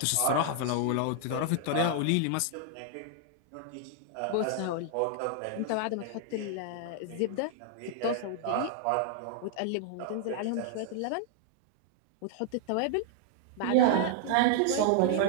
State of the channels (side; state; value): both; different; correlation 0.00